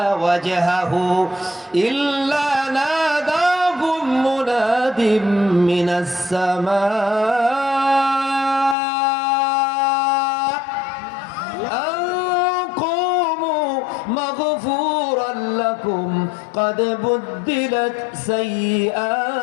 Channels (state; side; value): drops out; right; at 8.8 s